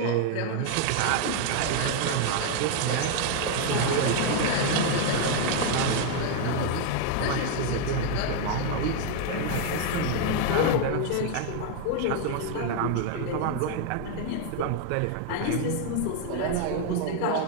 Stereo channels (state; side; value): different; both; correlation 0.01